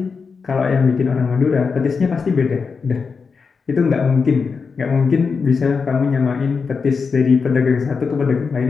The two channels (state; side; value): quieter; right; 5.2 dB